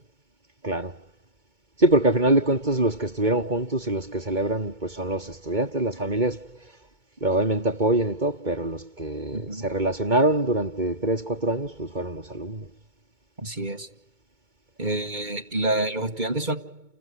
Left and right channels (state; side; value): late; left; 2.2 ms